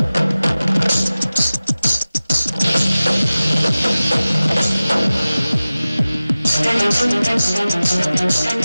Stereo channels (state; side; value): inverted; both; correlation -0.97